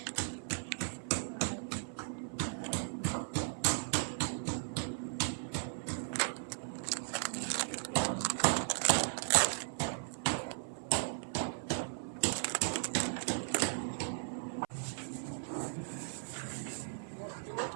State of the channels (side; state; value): left; silent; 53 dB below the other